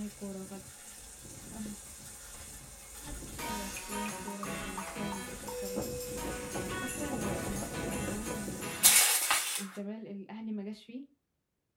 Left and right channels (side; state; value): both; identical; correlation 1.00